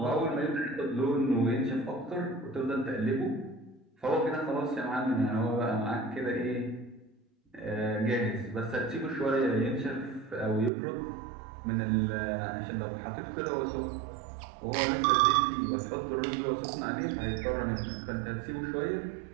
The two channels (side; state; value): left; drops out; at 10.7 s